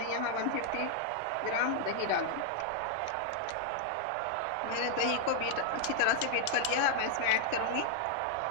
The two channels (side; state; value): both; different; correlation 0.00